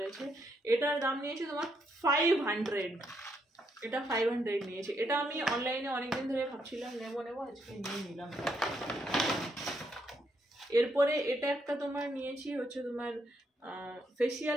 আছে। এটার দাম নিয়েছে তোমার 500। এটা 500 নিয়েছে। এটা আমি অনলাইনে অনেকদিন ধরে ভাবছিলাম নেবো, আজকে নিয়ে নিলাম। এরপরে এটা একটা তোমার নিয়েছি হচ্ছে তোমার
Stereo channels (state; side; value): normal; both; correlation 0.76